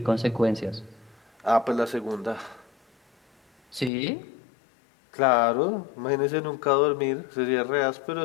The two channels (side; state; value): right; drops out; at 3.9 s